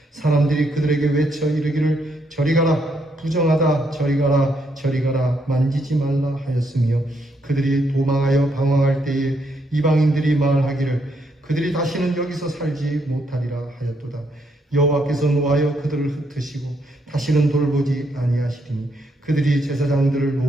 사람들이 그들에게 외쳐 이르기를 저리 가라 부정하다 저리 가라 저리 가라 만지지 말라 하였으며 그들이 도망하여 방황할 때에 이방인들이 말하기를 그들이 다시는 여기서 살지 못하리라 하였도다. 여호와께서 노하여 그들을 흩으시고 다시는 돌보지 아니하시리니 그들이 제사장들을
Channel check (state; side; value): normal; both; correlation 0.76